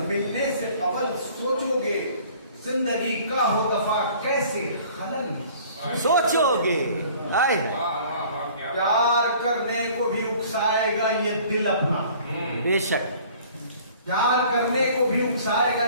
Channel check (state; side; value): inverted; both; correlation -0.51